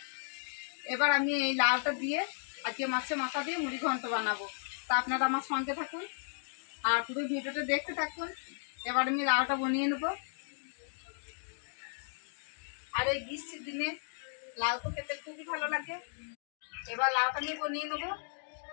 এবার আমি এই লাউটা দিয়ে আজকে মাছের মাথা দিয়ে মুড়ি ঘন্ট বানাবো। তা আপনারা আমার সঙ্গে থাকুন আর পুরো ভিডিওটা দেখতে থাকুন। এবার আমি লাউটা বানিয়ে নেব। আর এই গ্রীষ্মের দিনে লাউ তো খেতে খুবই ভালো লাগে। এবার লাউটা আমি বানিয়ে নেবো।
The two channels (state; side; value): silent; right; digital silence